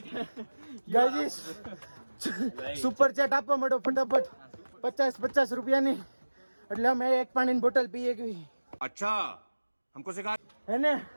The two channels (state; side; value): inverted; both; correlation -1.00